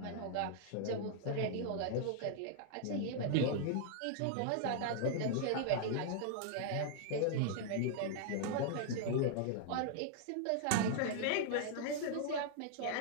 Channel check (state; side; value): different; both; correlation -0.01